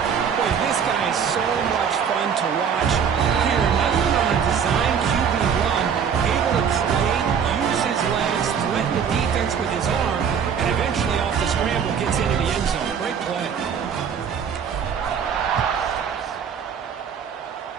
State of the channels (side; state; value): left; quieter; 7.3 dB